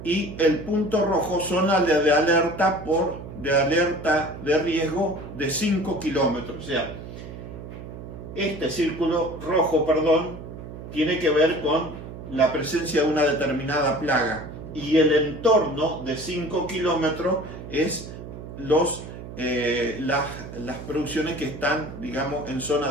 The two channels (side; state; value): right; noise; hum, 12 dB below the sound